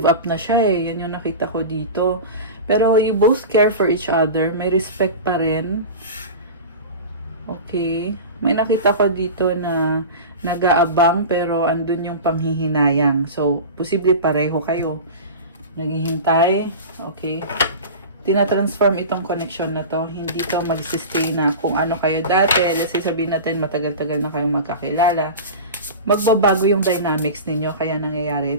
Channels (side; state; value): both; inverted; correlation -0.30